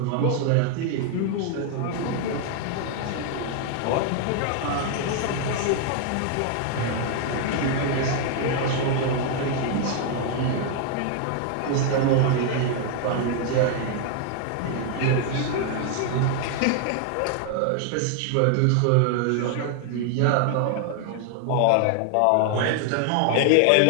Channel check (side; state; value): both; different; correlation 0.00